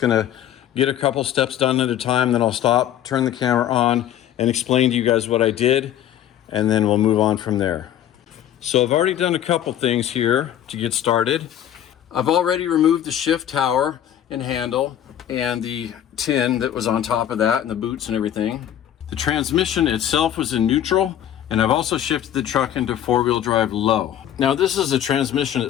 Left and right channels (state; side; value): quieter; right; 10.9 dB